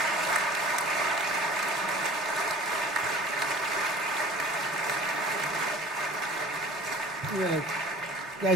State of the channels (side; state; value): both; normal; correlation 0.45